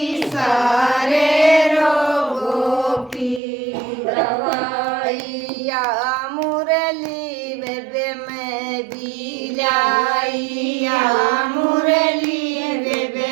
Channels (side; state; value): left; drops out; at 3.4 s